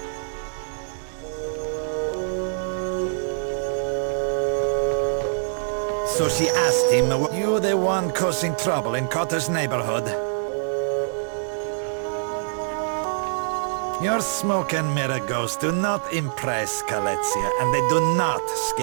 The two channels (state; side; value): silent; left; digital silence